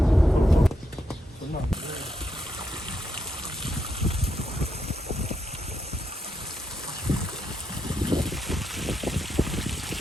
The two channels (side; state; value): both; normal; correlation 0.82